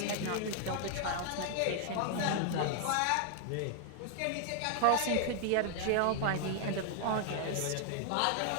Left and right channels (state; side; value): different; both; correlation 0.00